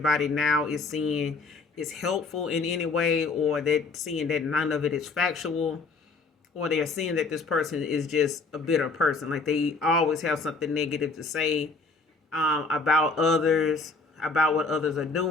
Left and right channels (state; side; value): quieter; right; 3.9 dB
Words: now is seeing is helpful in any way, or they're seeing that none of it is factual, or they're seeing that this person is just a bitter person. Like they always have something negative to say about others, about what others are